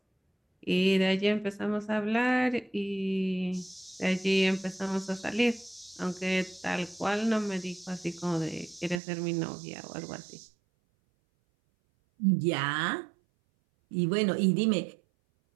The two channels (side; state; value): left; drops out; at 9.0 s